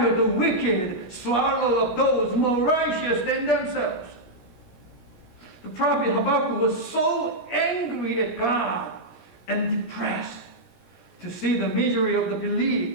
the wicked swallow up those more righteous than themselves. The prophet Habakkuk was so angry at God and depressed to see the misery of the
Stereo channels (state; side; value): late; right; 17 ms